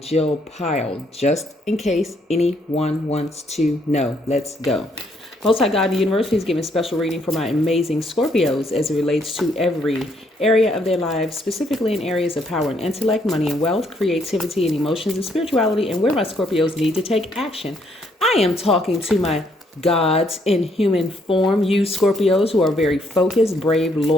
Pyle, just in case anyone wants to know. Let's go. Most High God in the universe, please give me a special reading for my amazing Scorpios as it relates to every area of their lives, specifically in areas of power and intellect, money and wealth, creativity and emotions and spirituality, and where my Scorpios need to take action. I am talking to my gods in human form, you Scorpios who are very focused, brave,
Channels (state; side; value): normal; both; correlation 0.71